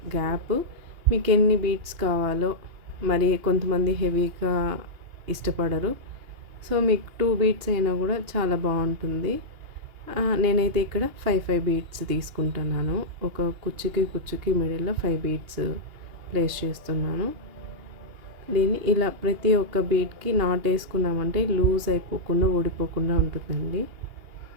గ్యాప్ మీకు ఎన్ని బీడ్స్ కావాలో. మరి కొంతమంది హెవీగా ఇష్టపడరు, సో మీకు 2 బీడ్స్ అయినా కూడా చాలా బాగుంటుంది. నేనైతే ఇక్కడ 5 బీడ్స్ తీసుకుంటున్నాను. ఒక కుచ్చుకి మిడిల్లో 5 బీడ్స్ ప్లేస్ చేస్తున్నాను. దీన్ని ఇలా ప్రతి ఒక్క బీడ్కి నాట్ వేసుకున్నామంటే లూజ్ అయిపోకుండా, ఊడిపోకుండా ఉంటుందండి.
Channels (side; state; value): left; late; 2.8 ms